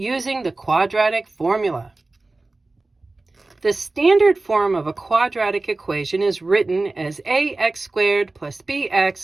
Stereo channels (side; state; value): left; quieter; 3.2 dB